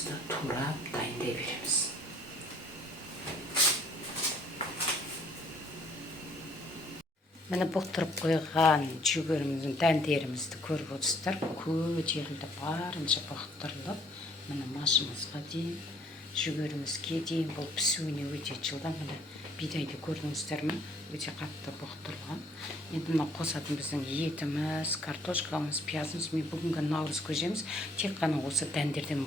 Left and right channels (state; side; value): normal; both; correlation 0.61